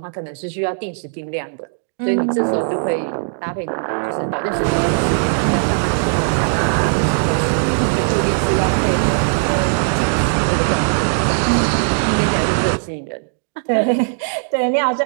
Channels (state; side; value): silent; left; digital silence